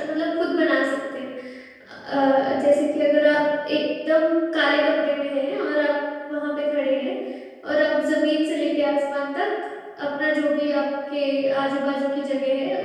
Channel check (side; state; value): both; identical; correlation 1.00